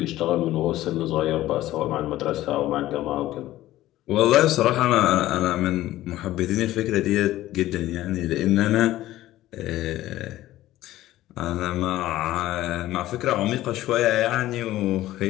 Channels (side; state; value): right; quieter; 15.2 dB